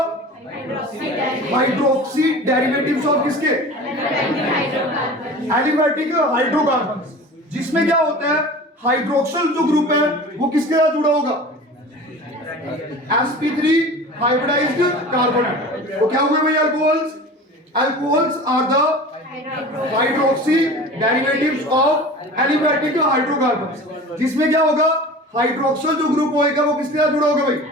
hydroxy derivatives of किसके? Aliphatic hydrocarbons. जिसमें क्या होता है, हाइड्रोक्सिल जो ग्रुप है वो किसके साथ जुड़ा होगा? sp3 hybridised carbon atom. तो क्या हुए भाई alcohols? Alcohols are the hydroxy derivatives of aliphatic hydrocarbons. जिसमें क्या होगा, हाइड्रोक्सिल जो ग्रुप होएगा वो किसके साथ जुड़ा होगा भाई?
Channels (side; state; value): both; normal; correlation 0.38